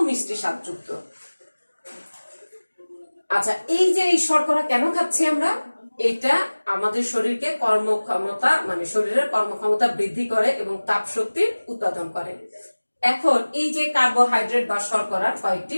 মিষ্টি স্বাদযুক্ত। আচ্ছা, এই যে এই শর্করা কেন খাচ্ছি আমরা? এটা আমাদের শরীরকে কর্মক্ষমতা, মানে শরীরের কর্মক্ষমতা বৃদ্ধি করে এবং তাপ শক্তি উৎপাদন করে। এখন এই যে কার্বোহাইড্রেট বা শর্করার কয়েকটি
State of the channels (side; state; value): both; inverted; correlation -1.00